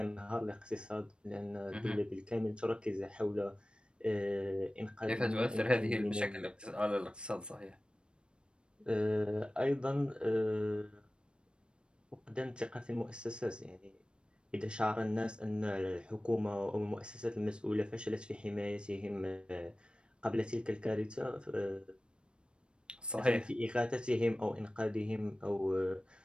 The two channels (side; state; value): left; late; 0.055 ms